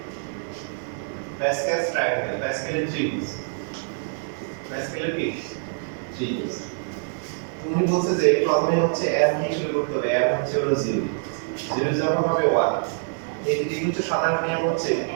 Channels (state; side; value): silent; left; 62 dB below the other